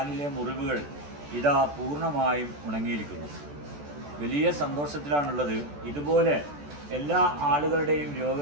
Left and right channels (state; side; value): late; left; 14 ms